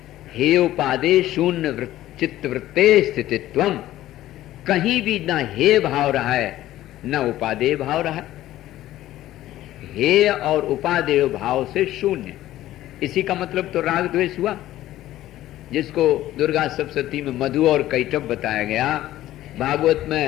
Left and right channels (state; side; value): quieter; right; 14.4 dB